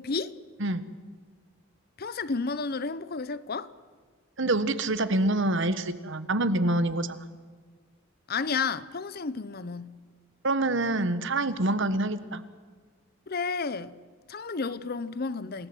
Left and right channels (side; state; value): both; normal; correlation 0.29